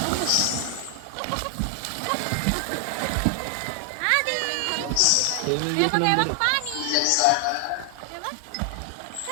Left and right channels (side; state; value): both; different; correlation 0.00